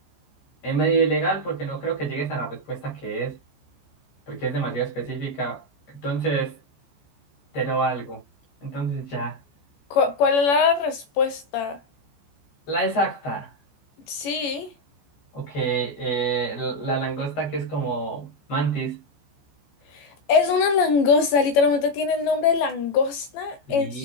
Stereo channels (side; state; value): right; late; 14 ms